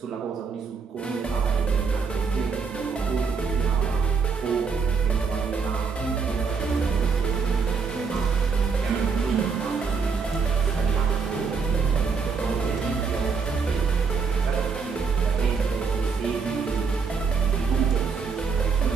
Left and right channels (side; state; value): left; quieter; 5.3 dB